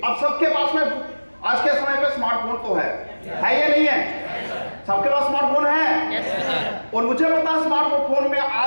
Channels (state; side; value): inverted; both; correlation -1.00